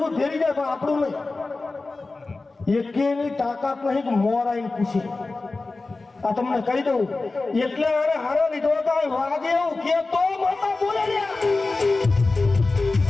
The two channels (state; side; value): quieter; right; 3.5 dB